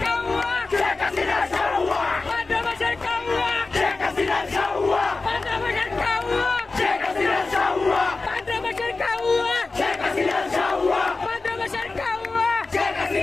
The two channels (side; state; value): right; quieter; 3.7 dB